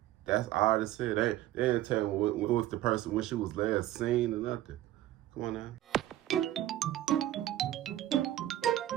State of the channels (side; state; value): left; quieter; 14.0 dB